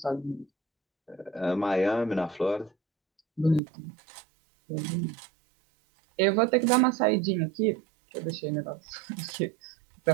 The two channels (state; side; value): drops out; left; at 3.6 s